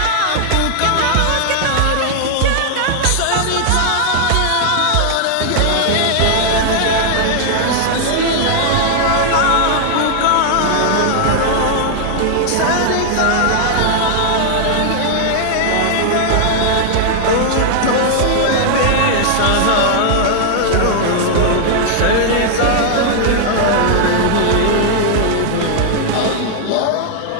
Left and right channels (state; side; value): different; both; correlation 0.00